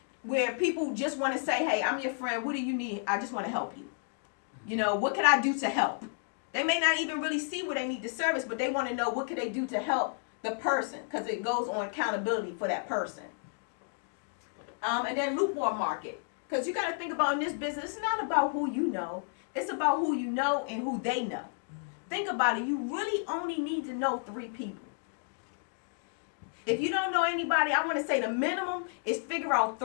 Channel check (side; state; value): right; silent; digital silence